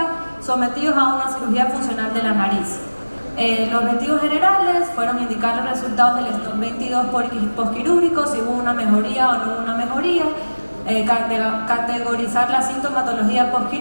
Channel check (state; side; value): inverted; both; correlation -1.00